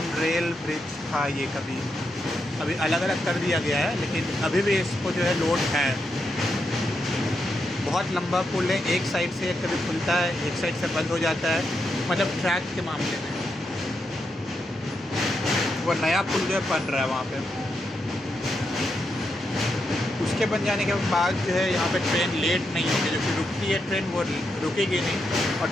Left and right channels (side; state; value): both; normal; correlation 0.83